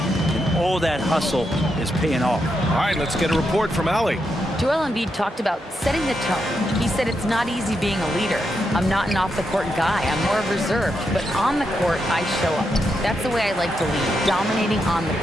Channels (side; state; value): both; normal; correlation 0.83